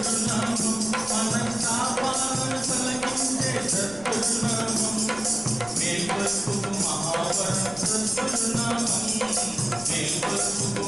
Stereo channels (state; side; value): noise; left; rumble, 19 dB below the sound